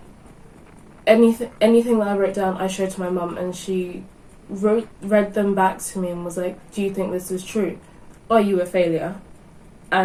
anything that I wrote down I showed to my mum, and she read them back to me and was like, do you think this is true? Are you a failure?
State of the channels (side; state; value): both; identical; correlation 1.00